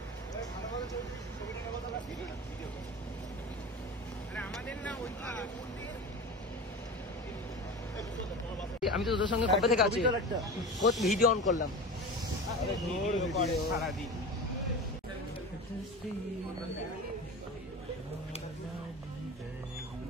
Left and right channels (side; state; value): both; normal; correlation 0.31